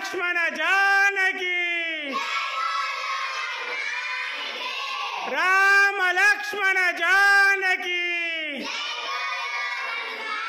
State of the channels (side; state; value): both; identical; correlation 1.00